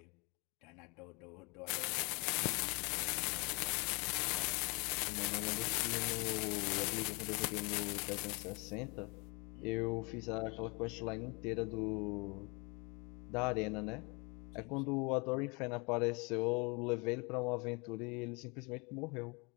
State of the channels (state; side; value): quieter; right; 29.6 dB